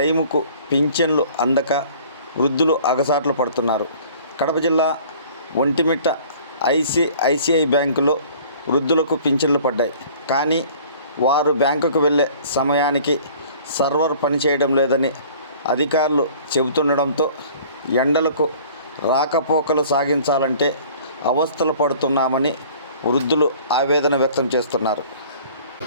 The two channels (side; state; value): both; inverted; correlation -0.50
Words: పింఛన్లు అందక వృద్ధులు అగసాట్లు పడుతున్నారు. కడప జిల్లా ఒంటిమిట్ట ఐసిఐసిఐ బ్యాంకులో వృద్ధులకు పింఛన్లు పడ్డాయి. కానీ వారు బ్యాంకుకు వెళ్ళే సమయానికి సర్వర్ పనిచేయడం లేదని అధికారులు చెబుతుండడంతో ఎండలకు రాకపోకలు సాగించాలంటే అవస్థలు పడుతున్నామని వృద్ధులు ఆవేదన వ్యక్తం చేస్తున్నారు.